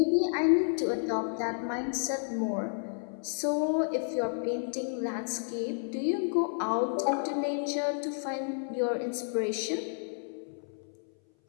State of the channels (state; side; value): silent; right; 57 dB below the other